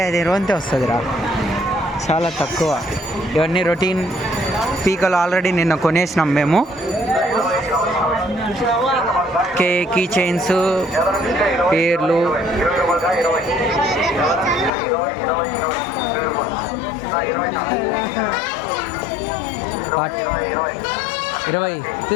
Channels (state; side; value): drops out; right; at 14.7 s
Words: అది రోంతే వస్తుందిరా, చాలా తక్కువ. ఇవన్నీ రొటీన్ పీకలు ఆల్రెడీ నిన్న కొనేసినాం మేము. కీ చైన్స్, పేర్లు, ఇరవై